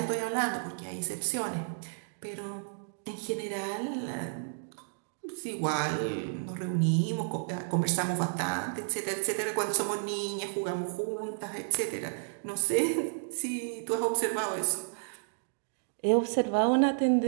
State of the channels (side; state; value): left; silent; digital silence